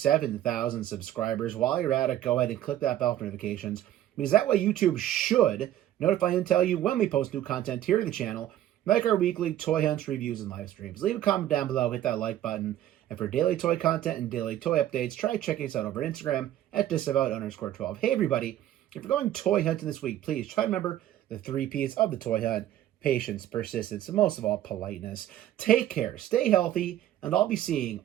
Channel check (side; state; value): left; quieter; 12.6 dB